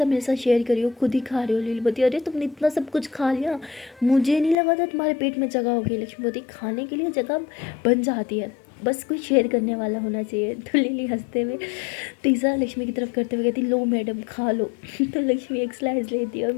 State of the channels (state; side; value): drops out; right; at 4.5 s